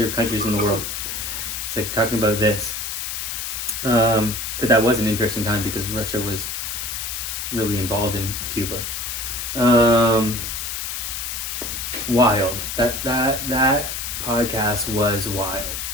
countries in the world. It's like talking about this. But that was an interesting time because Russia was really involved in Cuba. Wild. That podcast was wild.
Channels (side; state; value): left; noise; hiss, 4 dB below the sound